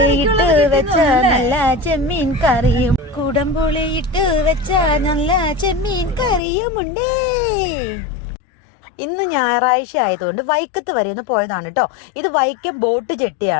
വെച്ച നല്ല ചെമ്മീൻ കറിയും, കുടംപുളിയിട്ട് വെച്ച നല്ല ചെമ്മീൻ കറിയുമുണ്ട്. ഇന്ന് ഞായറാഴ്ച ആയതുകൊണ്ട് വൈക്കത്ത് വരെ ഒന്ന് പോയതാണ് കേട്ടോ. ഇത് വൈക്കം ബോട്ട്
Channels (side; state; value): right; drops out; at 6.4 s